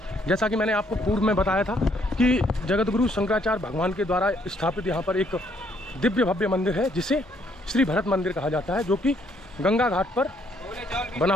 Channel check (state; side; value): normal; both; correlation 0.68